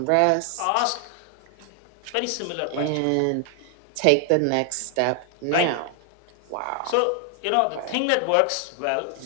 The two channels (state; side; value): different; both; correlation 0.00